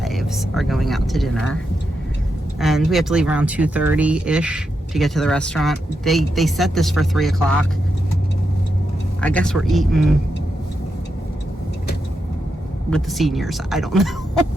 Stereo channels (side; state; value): both; normal; correlation 0.85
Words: are going out to dinner. And we have to leave around 2:30-ish to get to the restaurant. They set this for 3 o'clock. I guess we're eating with the seniors. I don't know.